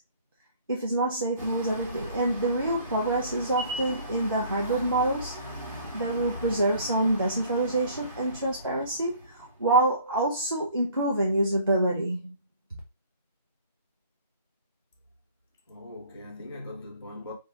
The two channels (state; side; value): inverted; both; correlation -0.52